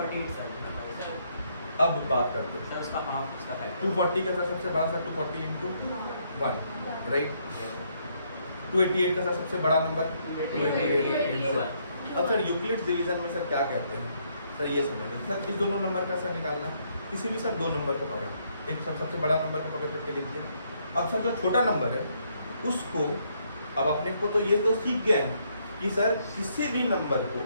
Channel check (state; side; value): inverted; both; correlation -0.72